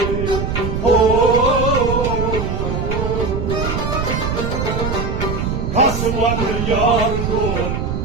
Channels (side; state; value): right; noise; rumble, 2 dB below the sound